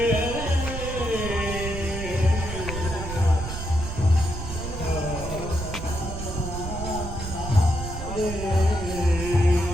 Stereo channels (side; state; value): right; noise; rumble, 7 dB below the sound